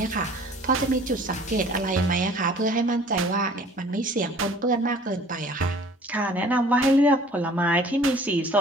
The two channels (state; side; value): normal; both; correlation 0.51